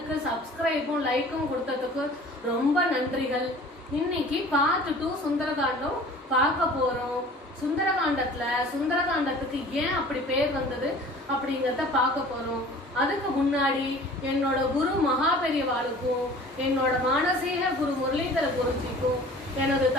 சப்ஸ்கிரைபும் லைக்கும் கொடுத்ததுக்கு ரொம்ப நன்றிகள். இன்னைக்கு பார்ட் 2 சுந்தரகாண்டம் பார்க்க போறோம். சுந்தரகாண்டத்துக்கு ஏன் அப்படி பேர் வந்தது அப்படிங்கறத பார்க்க போறோம். அதுக்கு முன்னாடி என்னோட குரு மகாபெரிவாளுக்கும் என்னோட மானசீக குரு முரளிதர குருஜிக்கும் எனது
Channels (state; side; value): normal; both; correlation 0.46